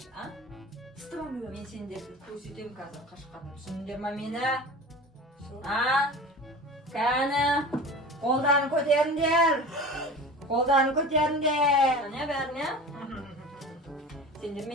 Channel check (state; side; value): normal; both; correlation 0.35